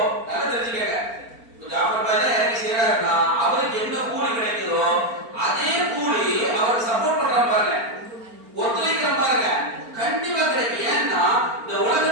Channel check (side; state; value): left; late; 4.4 ms